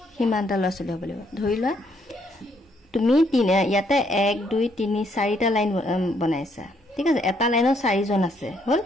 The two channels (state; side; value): normal; both; correlation 0.71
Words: হিমানটা ল'ৰা ছোৱালী হ'ব লাগিব ধৰি লোৱা তুমি ইয়াতে 1 2 3 4টা লাইন বনাইছা ঠিক আছে এটা লাইনত 4 জন আছে হল